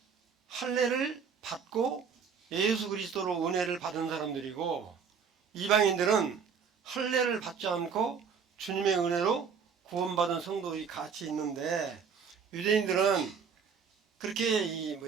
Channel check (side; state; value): left; quieter; 6.3 dB